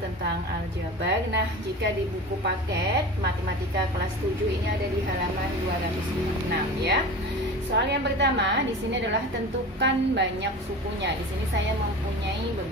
aljabar. Nah, jika di buku paket Matematika kelas 7 ini ada di halaman 206 ya. Soal yang pertama di sini adalah tentukan banyak sukunya. Di sini saya mempunyai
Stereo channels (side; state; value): both; normal; correlation 0.33